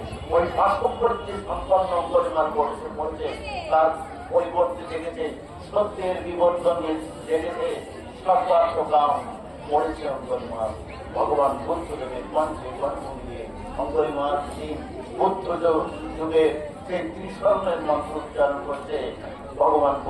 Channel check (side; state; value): both; identical; correlation 1.00